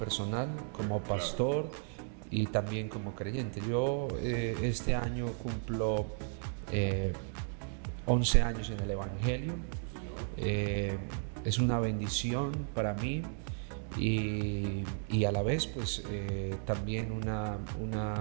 como pastor, claro, y también como creyente. Yo este año cumplo 11 años en el Evangelio. Es una bendición para mí y a la vez pues también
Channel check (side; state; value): left; silent; 55 dB below the other